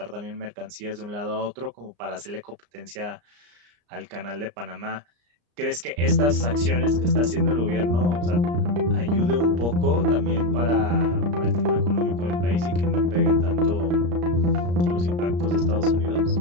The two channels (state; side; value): late; left; 34 ms